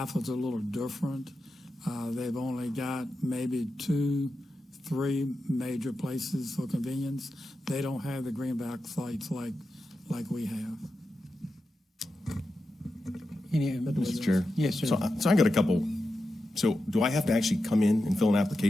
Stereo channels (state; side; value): normal; both; correlation 0.90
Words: a little different. They've only got maybe 2-3 major places for convenience. They don't have the greenback sites like we have. Mr. Chair. Yes, sir. So I got a couple. So do I have to actually come in and fill an